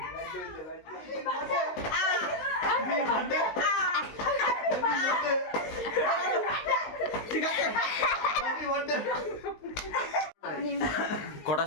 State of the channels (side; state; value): right; late; 19 ms